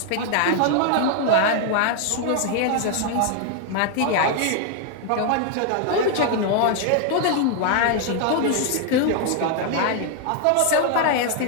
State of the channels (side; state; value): both; different; correlation 0.00